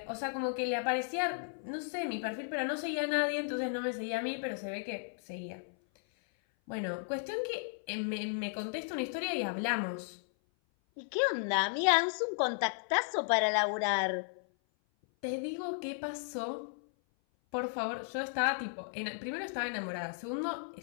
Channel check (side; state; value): right; silent; 55 dB below the other